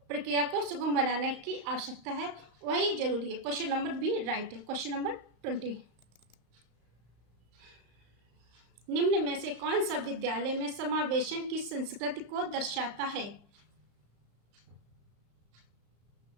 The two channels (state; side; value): late; left; 35 ms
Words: प्रक्रिया को सुगम बनाने की आवश्यकता है, वही जरूरी है। क्वेश्चन नंबर बी राइट है। क्वेश्चन नंबर 20, निम्न में से कौन सा विद्यालय में समावेशन की संस्कृति को दर्शाता है?